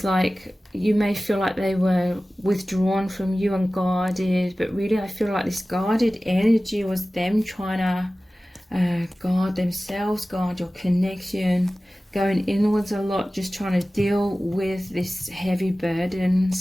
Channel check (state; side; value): normal; both; correlation 0.97